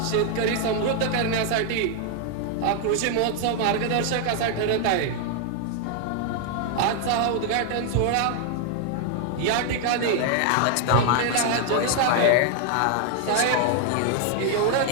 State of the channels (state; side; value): different; both; correlation 0.00